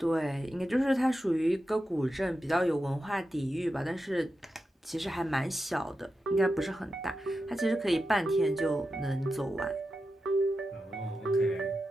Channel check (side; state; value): both; normal; correlation 0.90